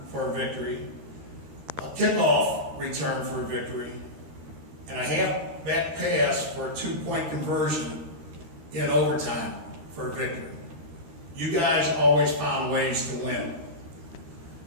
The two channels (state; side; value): late; left; 13 ms